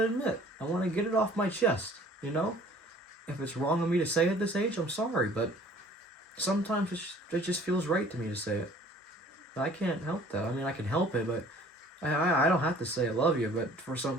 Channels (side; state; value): both; normal; correlation 0.52